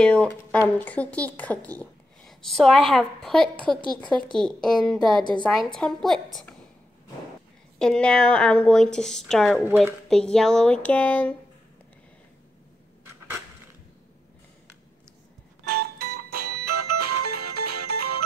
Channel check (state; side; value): normal; both; correlation 0.86